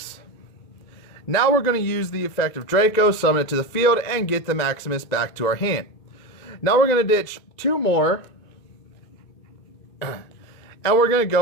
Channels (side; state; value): right; late; 2.2 ms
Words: Now we're going to use the effect of Draco, summon it to the field, and get the Maximus back to our hand. Now we're going to ditch 2 more. And we're going to